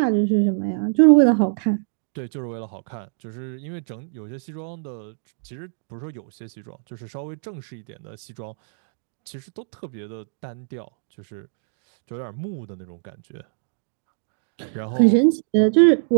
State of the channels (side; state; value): left; silent; digital silence